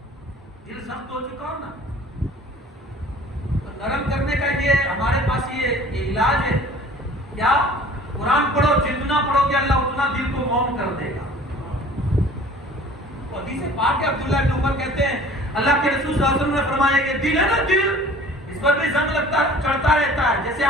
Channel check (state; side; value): normal; both; correlation 0.48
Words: دل سخت ہو چکا ہو نا، نرم کرنے کا یہ ہمارے پاس یہ علاج ہے. کیا؟ قرآن پڑھو، جتنا پڑھو گے اللہ اتنا دل کو موم کر دے گا. حدیث پاک ہے، عبداللہ بن عمر کہتے ہیں اللہ کے رسول صلی اللہ علیہ وسلم نے فرمایا کہ دل ہے نا، دل اس پر بھی زنگ لگتا چڑھتا رہتا ہے. جیسے